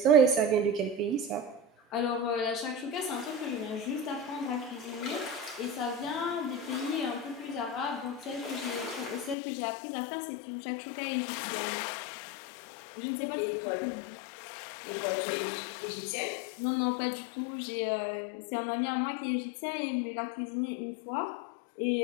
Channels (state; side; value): drops out; right; at 9.3 s